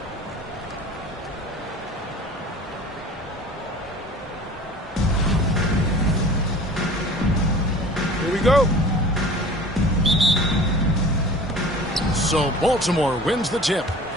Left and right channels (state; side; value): normal; both; correlation 0.42